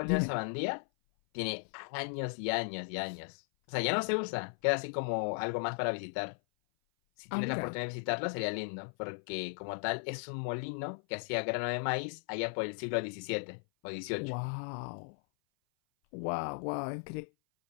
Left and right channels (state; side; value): silent; right; 54 dB below the other